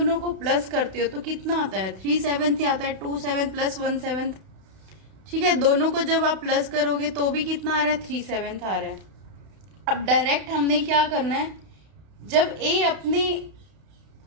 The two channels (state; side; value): late; left; 32 ms